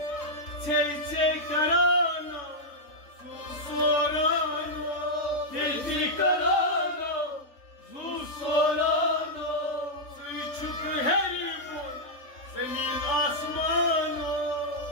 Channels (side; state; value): right; late; 3.4 ms